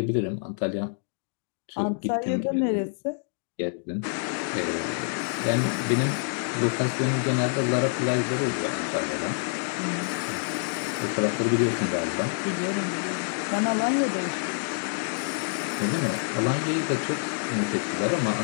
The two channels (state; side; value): silent; right; digital silence